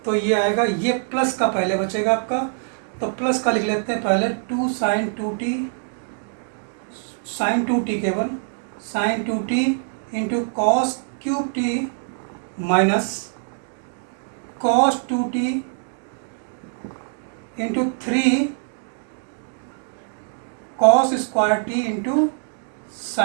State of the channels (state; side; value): silent; left; digital silence